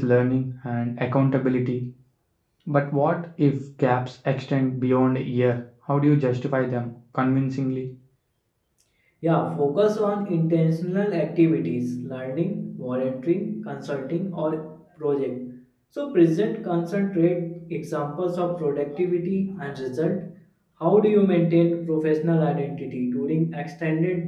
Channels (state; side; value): identical; both; correlation 1.00